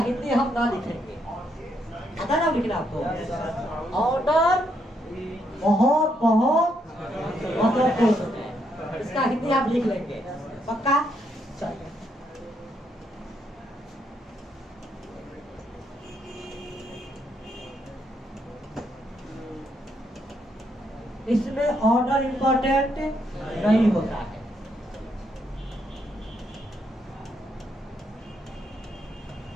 हम ना लिखेंगे, पता ना लिखना आपको। ऑर्डर बहुत बहुत महत्वपूर्ण है, इसका हिंदी आप लिख लेंगे पक्का। चलिए इसमें ऑर्डर इंपॉर्टेंट नहीं होता है।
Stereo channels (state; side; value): normal; both; correlation 0.76